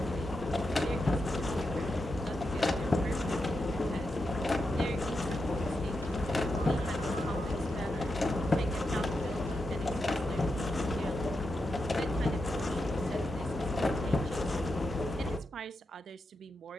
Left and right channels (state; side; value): normal; both; correlation 0.86